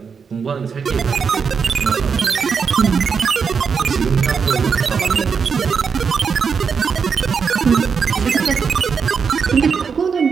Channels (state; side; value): quieter; left; 6.0 dB